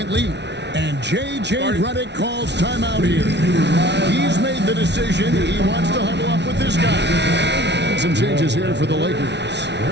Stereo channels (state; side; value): late; left; 0.50 ms